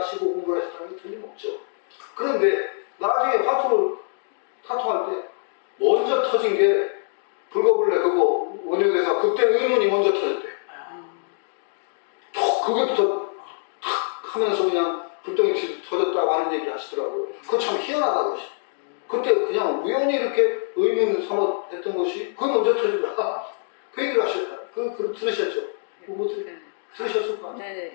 공부를 하셨다는 게 틀림없죠. 그런데 나중에 타투할 때 먼저 터진 게 불거불레 그거 원효대사 그때 의문이 먼저 터졌대. 그게부터 탁 하면서 그냥 불덩이 터졌다고 하는 얘기 하시더라고요. 그거 참 희한하다 그러시. 그때 그냥 우연히 이렇게 의문 삼아 했던 것이 그게 먼저 터지더라. 그 얘기를 하셨다. 들으셨죠? 뭐 네. 들으셨을 거 아니에요? 네,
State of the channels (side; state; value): right; silent; digital silence